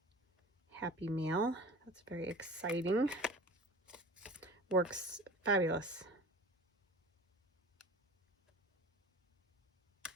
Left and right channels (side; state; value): both; normal; correlation 0.40